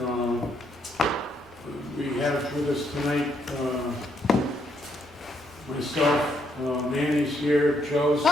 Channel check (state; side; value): noise; right; rumble, 30 dB below the sound